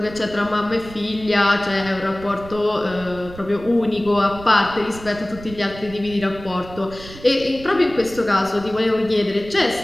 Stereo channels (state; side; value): noise; right; rumble, 16 dB below the sound